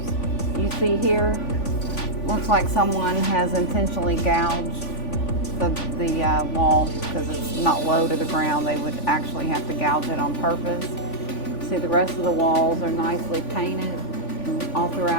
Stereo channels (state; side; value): late; right; 3.5 ms